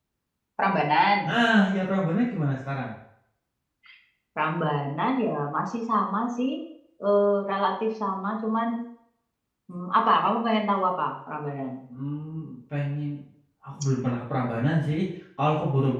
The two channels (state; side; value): identical; both; correlation 1.00